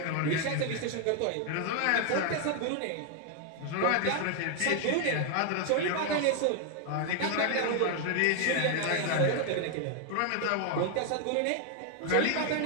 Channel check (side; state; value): both; different; correlation 0.00